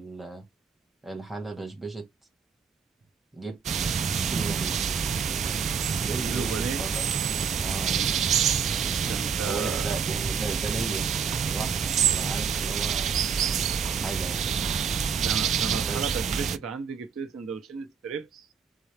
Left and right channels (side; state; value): left; quieter; 6.4 dB